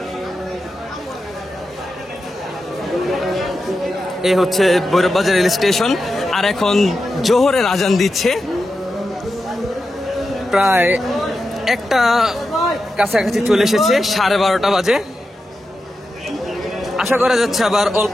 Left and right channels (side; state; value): both; normal; correlation 0.90